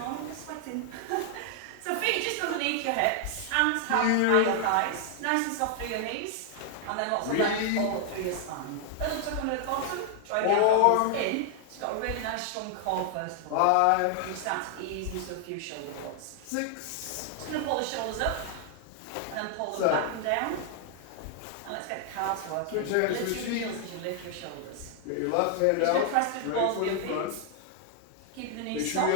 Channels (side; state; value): both; different; correlation 0.00